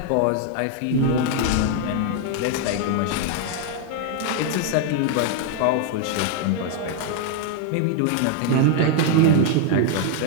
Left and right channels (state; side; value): different; both; correlation 0.00